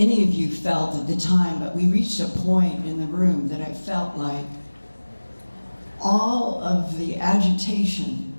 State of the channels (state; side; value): inverted; both; correlation -1.00